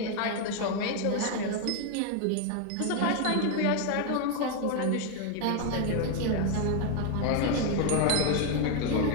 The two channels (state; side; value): different; both; correlation 0.01